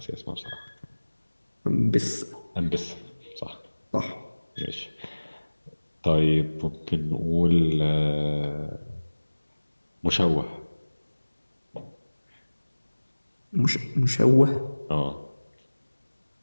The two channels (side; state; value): both; inverted; correlation -1.00